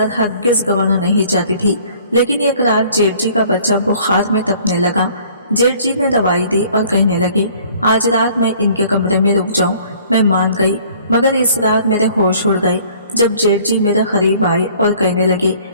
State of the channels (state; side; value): inverted; both; correlation -0.55